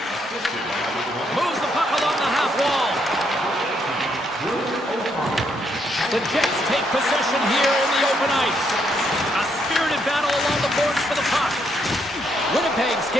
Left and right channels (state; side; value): normal; both; correlation 0.74